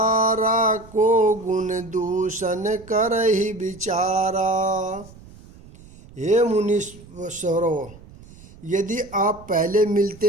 को गुण दूषण कर ही विचारा। हे मुनीश्वरों, यदि आप पहले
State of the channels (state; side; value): noise; right; rumble, 21 dB below the sound